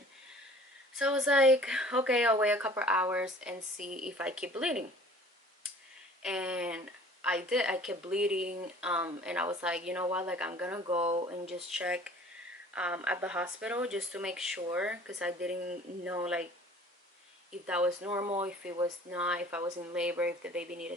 So I was like, okay, I'll wait a couple hours and see if I keep bleeding. And I did. I kept bleeding, and I was like, you know what, like I'm gonna go and just check at the hospital just to make sure, because I didn't know like if that was normal, if it was not, if I was in labor, if the baby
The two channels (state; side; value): normal; both; correlation 0.49